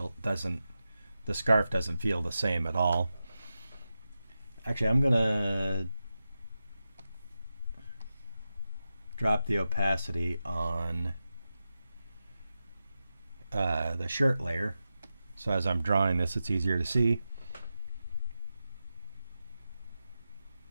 the scarf doesn't feel the same at all. Actually, I'm gonna drop the opacity on the shirt layer, so as I'm drawing this, it's easier to see.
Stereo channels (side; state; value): both; inverted; correlation -0.92